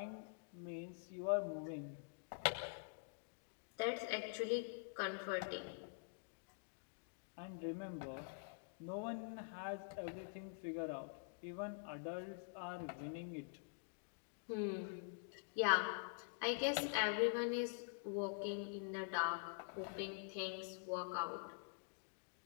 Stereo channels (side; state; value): right; silent; digital silence